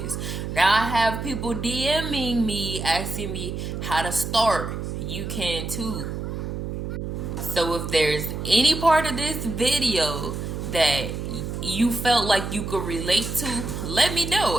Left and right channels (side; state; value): right; noise; hum, 5 dB below the sound